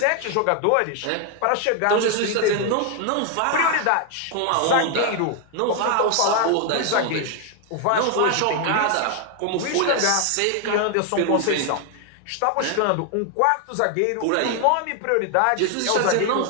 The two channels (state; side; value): different; both; correlation 0.00